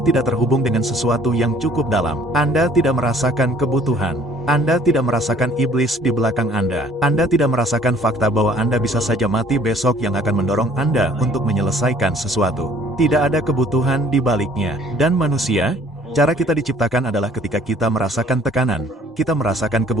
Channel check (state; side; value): normal; both; correlation 0.56